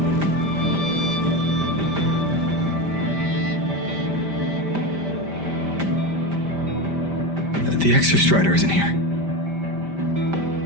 The Exostrider isn't here.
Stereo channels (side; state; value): left; late; 5.1 ms